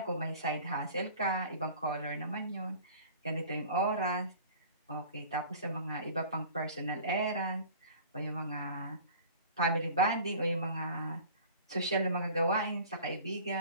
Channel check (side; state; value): both; inverted; correlation -0.44